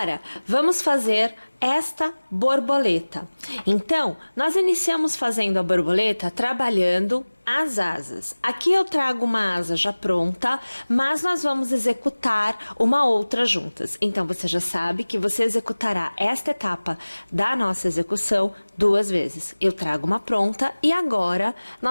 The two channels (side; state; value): both; inverted; correlation -1.00